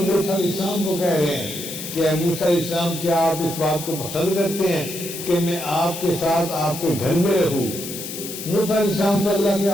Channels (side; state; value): left; noise; hiss, 9 dB below the sound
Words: علیہ السلام کو کہہ رہے ہیں کہ اے موسیٰ علیہ السلام کیا آپ اس بات کو پسند کرتے ہیں کہ میں آپ کے ساتھ آپ کے گھر میں رہوں؟ موسیٰ علیہ السلام تو اللہ کے